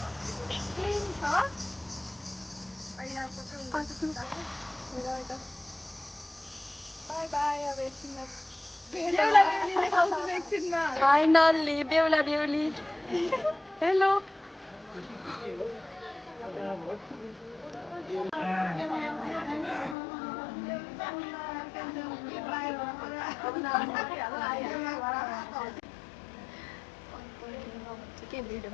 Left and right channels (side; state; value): right; drops out; at 20.0 s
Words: By by. अब एकछिनमा फाइनल्ली बेहुला बेहुली। हेलो के भिडियो